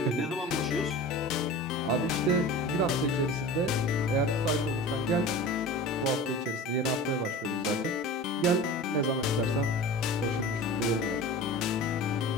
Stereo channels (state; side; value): normal; both; correlation 0.35